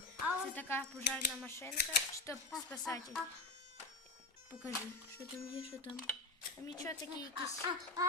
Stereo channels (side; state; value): right; quieter; 3.1 dB